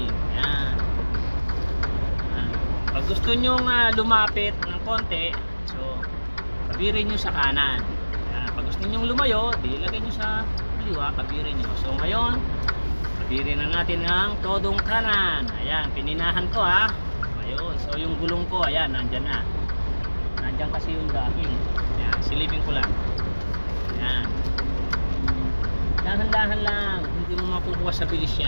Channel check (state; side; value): inverted; both; correlation -1.00